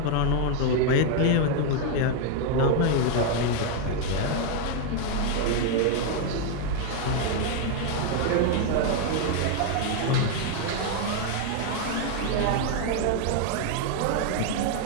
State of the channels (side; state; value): both; different; correlation 0.01